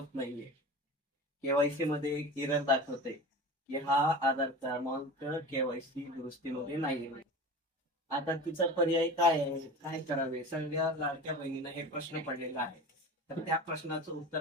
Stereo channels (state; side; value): normal; both; correlation 0.33